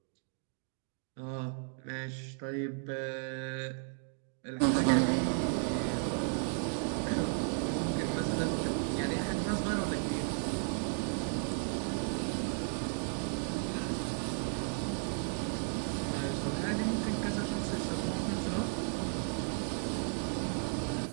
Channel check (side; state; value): left; silent; 55 dB below the other